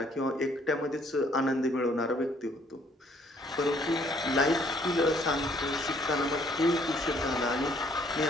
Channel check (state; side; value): normal; both; correlation 0.63